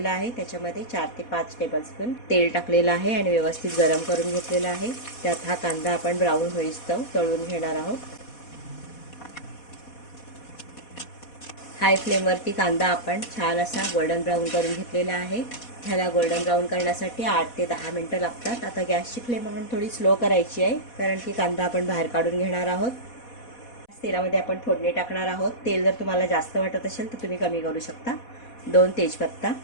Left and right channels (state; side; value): late; right; 4.1 ms